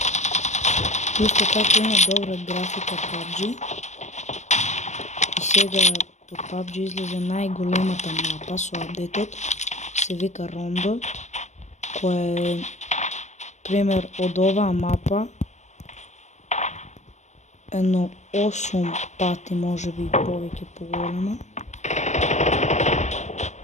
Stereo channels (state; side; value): late; right; 0.34 ms